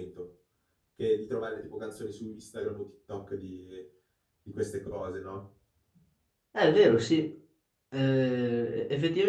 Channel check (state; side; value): identical; both; correlation 1.00